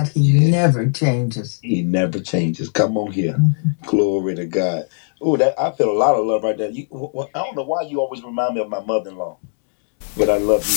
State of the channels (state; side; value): silent; right; digital silence